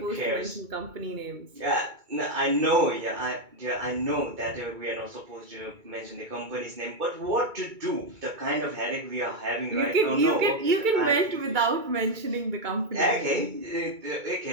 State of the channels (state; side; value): late; left; 2.2 ms